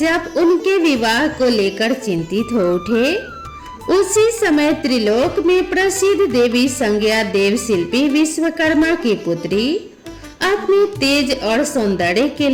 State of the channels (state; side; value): identical; both; correlation 1.00